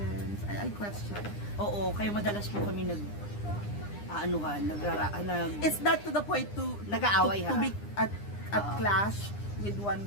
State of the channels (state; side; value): late; right; 9.8 ms